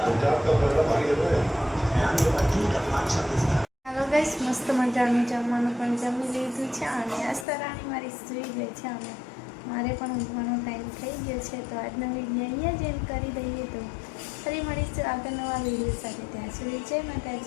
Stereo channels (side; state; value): right; drops out; at 7.5 s